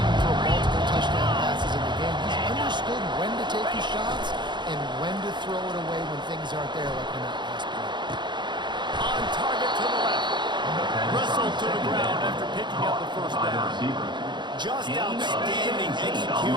hurled to the ground after picking up the first down. Just outstanding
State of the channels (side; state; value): left; late; 0.22 ms